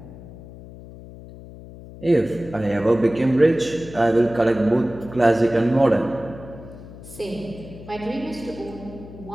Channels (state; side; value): noise; left; hum, 16 dB below the sound